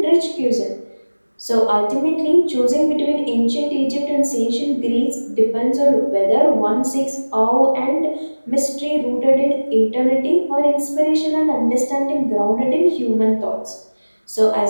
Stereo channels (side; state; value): both; inverted; correlation -1.00